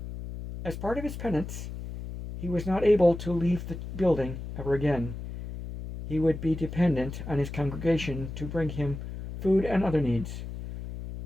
As part of his penance, he was not able to leave the building ever again. He would be dependent on his congregation to bring him food and other needs.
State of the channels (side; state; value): left; noise; hum, 9 dB below the sound